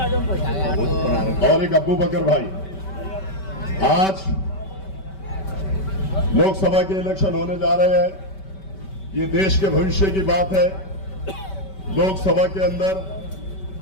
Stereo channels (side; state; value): right; late; 5.2 ms